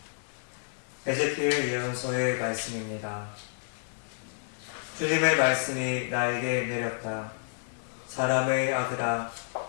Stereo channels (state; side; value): silent; right; 58 dB below the other